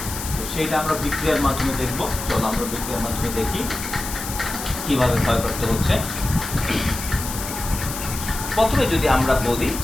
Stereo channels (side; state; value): left; noise; hiss, 8 dB below the sound